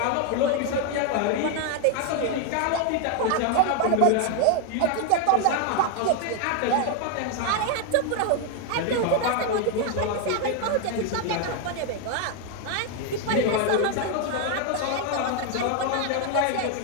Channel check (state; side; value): different; both; correlation 0.01